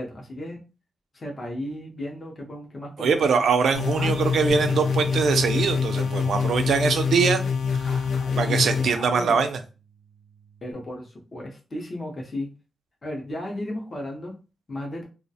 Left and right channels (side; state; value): both; normal; correlation 0.76